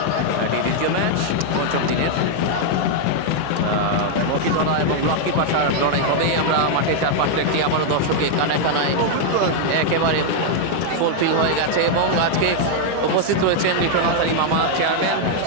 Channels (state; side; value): different; both; correlation 0.00